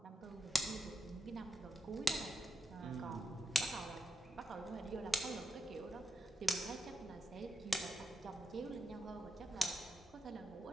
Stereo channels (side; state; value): both; normal; correlation 0.88